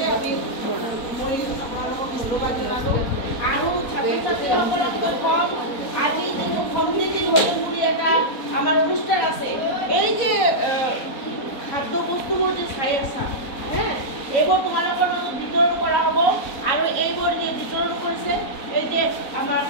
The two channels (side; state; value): right; late; 4.0 ms